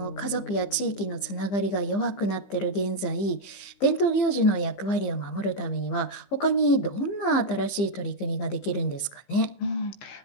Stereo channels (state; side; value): late; right; 15 ms